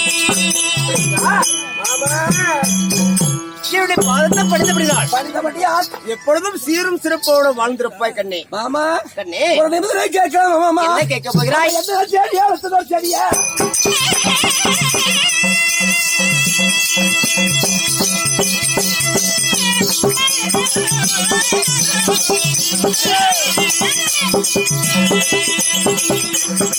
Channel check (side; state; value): both; identical; correlation 1.00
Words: என்னுடைய பாதத்தை படித்தபடியால் எப்பொழுதும் சீரும் சிறப்போடு வாழ்ந்திருப்பாய் கண்ணே. மாமா கண்ணே கேட்கலாம் மாமா. என்ன கேட்க போகிறாய்? சரியா